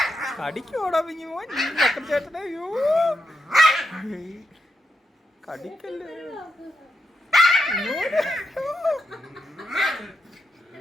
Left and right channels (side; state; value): both; normal; correlation 0.84